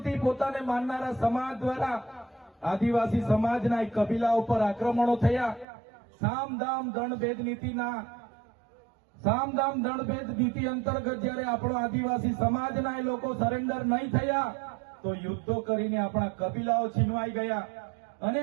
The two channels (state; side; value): drops out; left; at 5.7 s